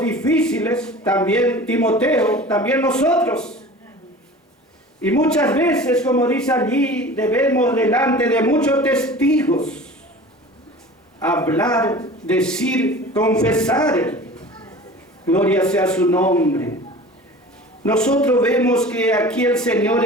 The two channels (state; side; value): normal; both; correlation 0.40